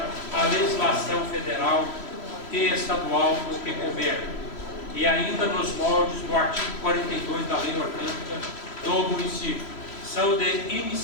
a legislação federal e estadual no que couber, e ainda nos moldes do artigo 42 da Lei Orgânica do município. São de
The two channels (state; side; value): late; right; 3.1 ms